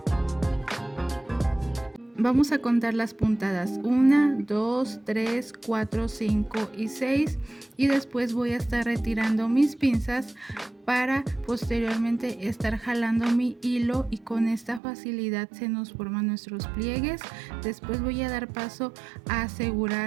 Vamos a contar las puntadas: 1, 2, 3, 4, 5 y 6, y después voy a estar retirando mis pinzas para posteriormente estar jalando mi hilo y con esta facilidad se nos forman nuestros pliegues. Después voy a dar paso a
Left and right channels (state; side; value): drops out; left; at 14.8 s